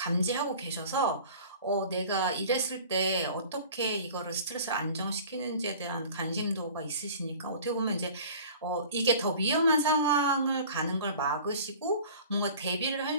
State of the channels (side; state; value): both; inverted; correlation -0.43